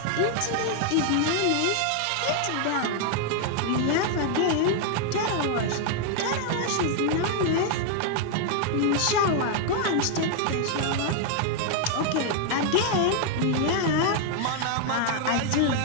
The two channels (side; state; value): both; different; correlation 0.00